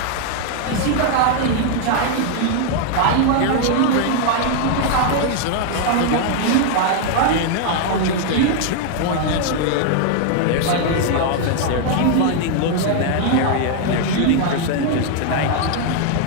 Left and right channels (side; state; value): both; different; correlation 0.00